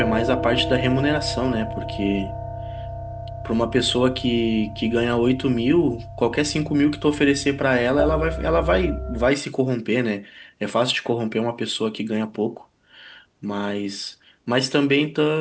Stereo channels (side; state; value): both; identical; correlation 1.00